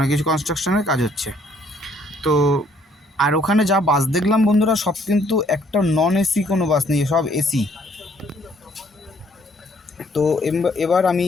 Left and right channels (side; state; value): both; normal; correlation 0.64